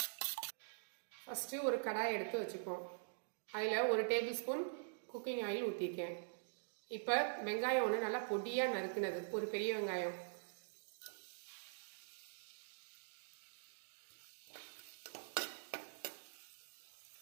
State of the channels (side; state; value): left; silent; digital silence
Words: ஃபஸ்ட்டு ஒரு கடாயை எடுத்து வச்சுப்போம். அதில் 1 டேபிள் ஸ்பூன் குக்கிங் ஆயில் ஊற்றிருக்கேன். இப்போ வெங்காயம் ஒன்று நல்லா பொடியாக நறுக்குனது, ஒரு பெரிய வெங்காயம்.